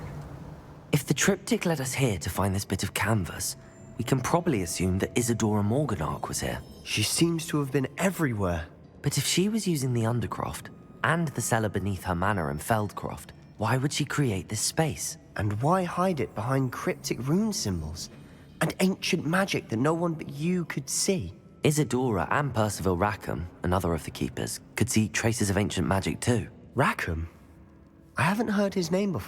If the Triptych led us here to find this bit of canvas, we can probably assume that Isidora Morganach was here. She seems to have been everywhere. But if she was using the Undercroft, and the cellar beneath her manor in Feldcroft, why would she create this space? And why hide it behind cryptic rune symbols? And ancient magic that no one but you could see? Isidora and Percival Rackham, another of the keepers, could see traces of ancient magic too. Rackham? I haven't heard his name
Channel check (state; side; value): identical; both; correlation 1.00